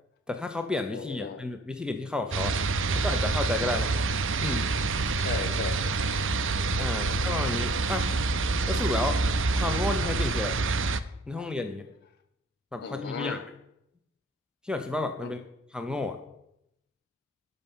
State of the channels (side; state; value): both; normal; correlation 0.56